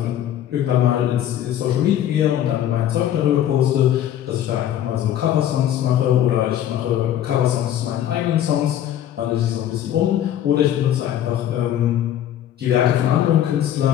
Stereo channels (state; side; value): quieter; right; 11.2 dB